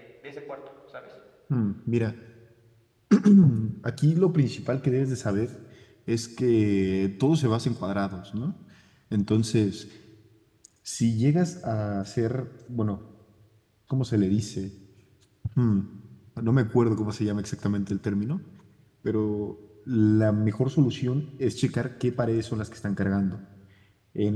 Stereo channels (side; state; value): both; identical; correlation 1.00